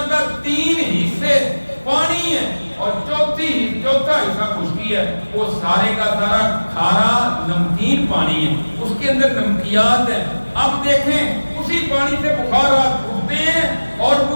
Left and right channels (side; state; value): both; inverted; correlation -1.00